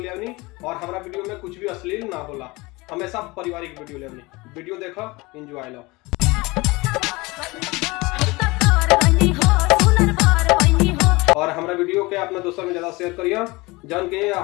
ले आनी और हमारा वीडियो में कुछ भी अश्लील ना होला, हमेशा पारिवारिक वीडियो ले आनी। वीडियो देखो, एंजॉय लो। और हमारा वीडियो के अपना दोस्तों में ज्यादा शेयर करिए, जौन के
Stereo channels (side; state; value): right; quieter; 23.3 dB